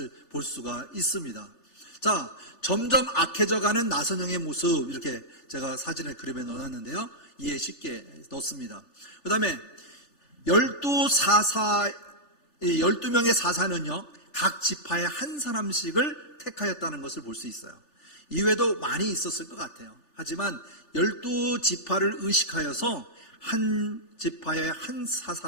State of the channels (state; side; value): late; right; 3.4 ms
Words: 볼 수가 있습니다. 자, 점점 악해져가는 나선형의 모습, 이렇게 제가 사진을 그림에 넣어놨는데요. 이해 쉽게 넣습니다. 그 다음에 12명의 사사는요, 각 지파의 한 사람씩을 택하였다는 것을 볼 수 있어요. 이외에도 많이 있었을 것 같아요. 하지만 12지파를 의식하여서 한 지파의 한